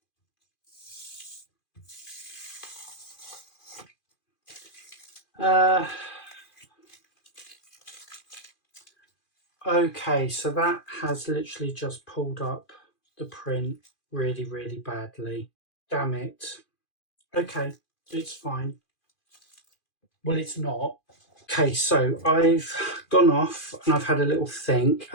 Okay, so that has literally just pulled up the print really, really badly. Damn it. Okay, it's fine. Well, it's not. Okay, so I've gone off and I've had a little think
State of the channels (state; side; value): late; right; 2.4 ms